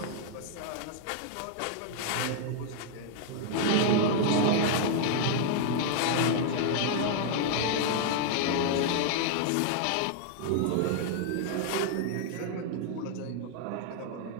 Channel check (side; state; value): both; different; correlation 0.00